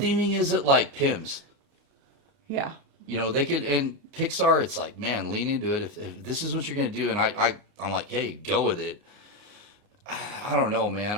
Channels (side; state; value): left; late; 30 ms